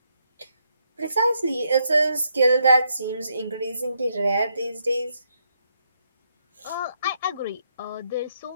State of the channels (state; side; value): inverted; both; correlation -0.77